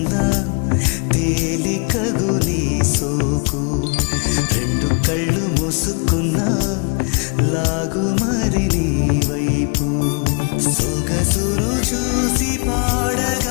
తేలికగు నీ సోకు రెండు కళ్ళు మూసుకున్నా లాగు మరి నీ వైపు సొగసును చూసి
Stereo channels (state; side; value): quieter; right; 33.6 dB